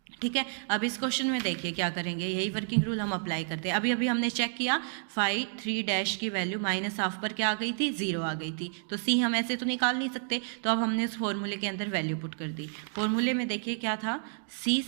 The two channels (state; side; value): silent; left; digital silence